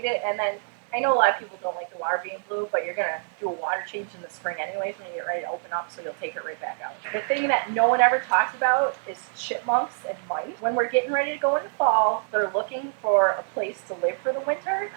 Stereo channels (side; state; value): left; silent; digital silence